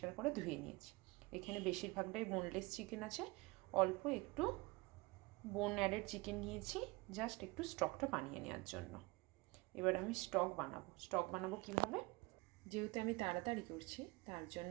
করে ধুয়ে নিয়েছি। এখানে বেশিরভাগটাই বোনলেস চিকেন আছে, অল্প একটু বোন অ্যাডেড চিকেন নিয়েছি জাস্ট একটু স্টকটা বানিয়ে নেওয়ার জন্য। এবার আমি স্টক বানাবো কীভাবে? যেহেতু আমি তাড়াতাড়ি করছি তার জন্য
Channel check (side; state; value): left; quieter; 24.1 dB